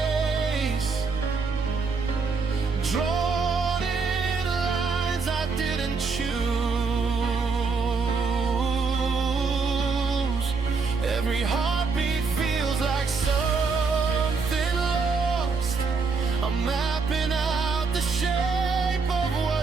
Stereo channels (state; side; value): quieter; left; 4.7 dB